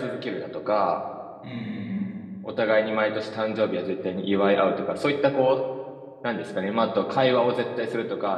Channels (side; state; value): both; identical; correlation 1.00